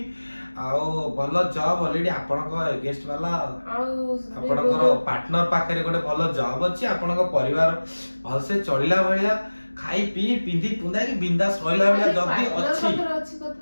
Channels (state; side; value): inverted; both; correlation -1.00